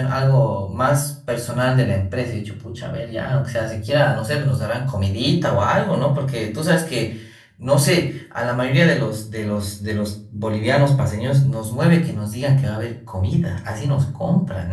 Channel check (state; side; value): identical; both; correlation 1.00